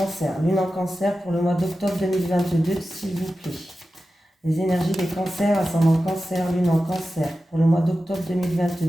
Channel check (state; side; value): normal; both; correlation 0.93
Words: Lune en cancer pour le mois d'octobre 2022, s'il vous plaît. Les énergies des cancers, ascendant cancer, lune en cancer pour le mois d'octobre